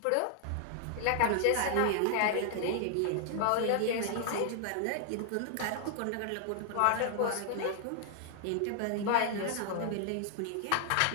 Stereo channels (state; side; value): different; both; correlation 0.00